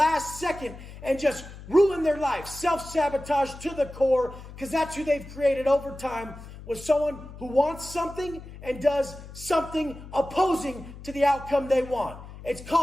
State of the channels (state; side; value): noise; left; hum, 15 dB below the sound